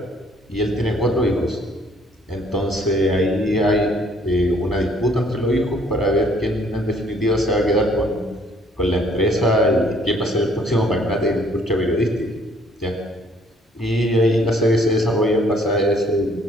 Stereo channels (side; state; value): both; normal; correlation 0.62